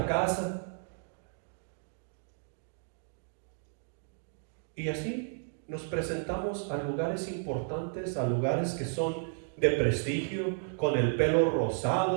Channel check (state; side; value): silent; left; digital silence